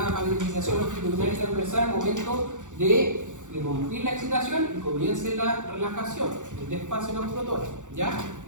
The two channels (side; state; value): left; late; 0.86 ms